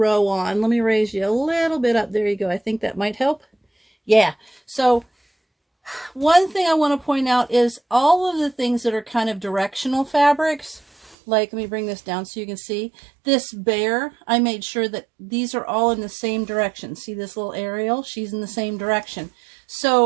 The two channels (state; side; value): drops out; left; at 11.2 s